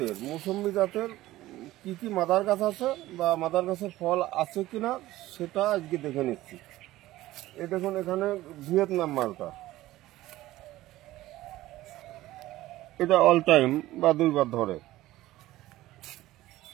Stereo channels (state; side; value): quieter; left; 16.3 dB